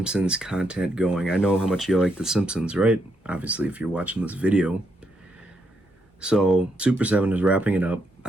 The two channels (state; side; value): normal; both; correlation 0.79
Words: content going. I know how much you like the Simpsons, right? Obviously, if you're watching this video. So, Super 7 is wrapping it up.